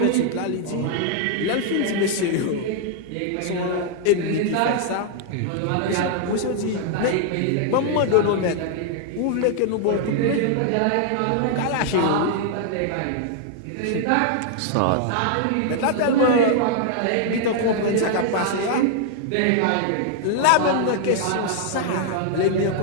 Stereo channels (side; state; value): both; different; correlation 0.00